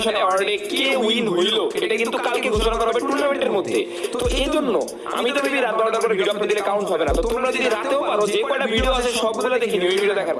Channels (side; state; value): both; identical; correlation 1.00